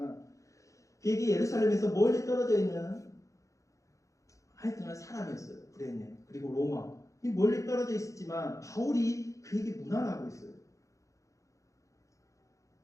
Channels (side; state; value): right; late; 0.15 ms